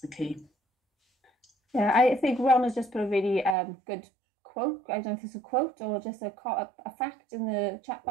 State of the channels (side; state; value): left; drops out; at 3.6 s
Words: key. Yeah, I think Ron has just put a really good quote. I don't know if it's a quote or just a fact in the chat